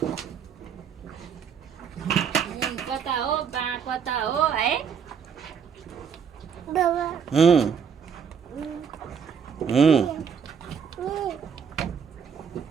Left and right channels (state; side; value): quieter; left; 6.9 dB